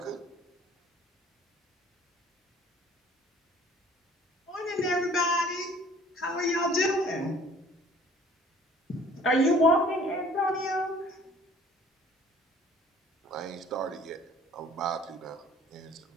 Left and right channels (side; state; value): both; normal; correlation 0.53